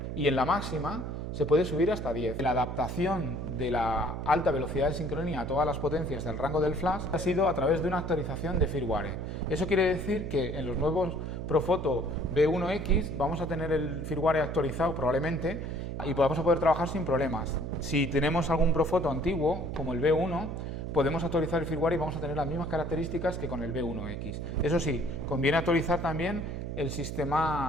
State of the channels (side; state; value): right; noise; hum, 5 dB below the sound